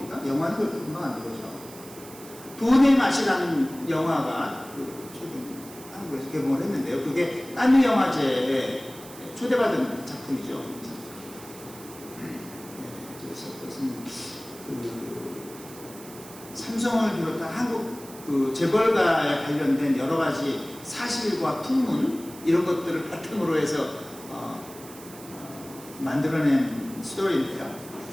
영화는 그렇게 금방 안 들어오죠. 돈의 맛이라는 영화가 최근 한국에서 개봉을 했는데요. 그게 깐느 영화제에 초대받은 작품이죠. 그래서 그것은 삼성을 비롯한 한국 재벌가에 관련된 여러 가지 사실과 풍문 이런 것들을 바탕으로 해서 만들어낸 스토리인데요.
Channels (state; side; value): noise; right; hiss, 17 dB below the sound